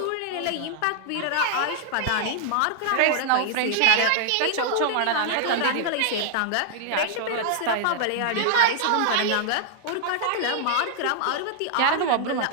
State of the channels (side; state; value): both; different; correlation 0.00